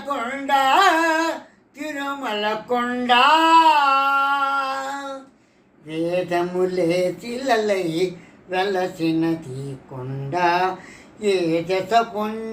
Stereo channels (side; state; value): both; identical; correlation 1.00